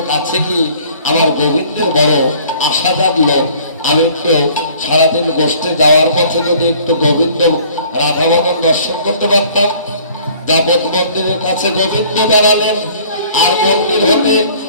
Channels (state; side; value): inverted; both; correlation -0.54